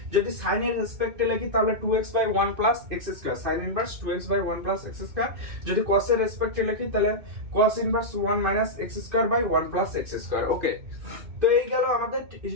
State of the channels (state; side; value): late; left; 2.6 ms